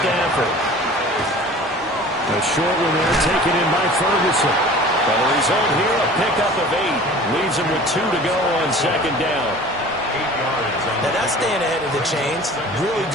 A short one there taken in by Ferguson. Well, the result here, a pickup of 8. Leaves him with 2 to go on 2nd down. 8 yards. Now that's staying ahead of the chains. Really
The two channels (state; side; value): normal; both; correlation 0.43